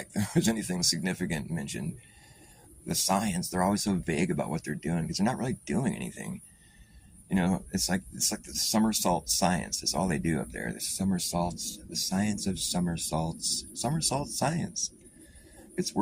there was anything significant mentioned. The science, they're always so vague about what they're doing because they're not really doing anything. It's like the somersault science. That's all they do up there. The somersaults, the science of somersaults, somersault science. It's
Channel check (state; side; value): identical; both; correlation 1.00